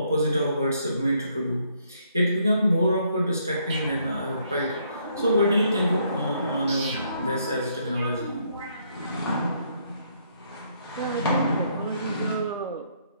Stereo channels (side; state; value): both; inverted; correlation -0.70